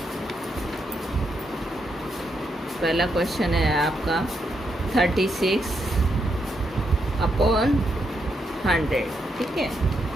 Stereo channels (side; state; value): both; normal; correlation 0.80